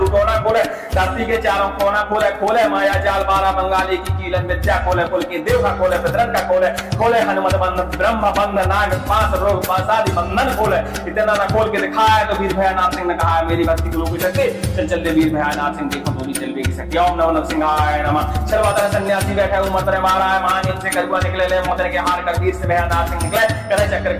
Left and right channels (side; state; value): both; identical; correlation 1.00